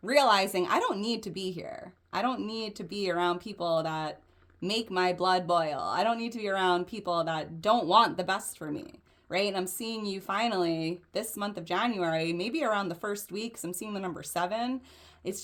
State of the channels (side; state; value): both; identical; correlation 1.00